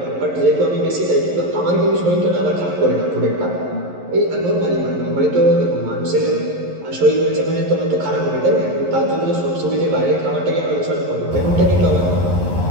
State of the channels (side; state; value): left; late; 11 ms